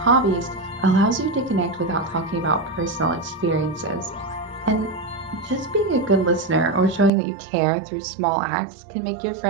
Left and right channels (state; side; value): drops out; left; at 7.1 s